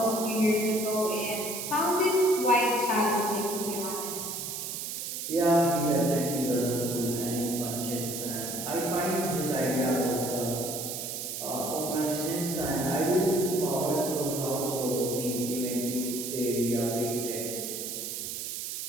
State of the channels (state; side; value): noise; right; hiss, 5 dB below the sound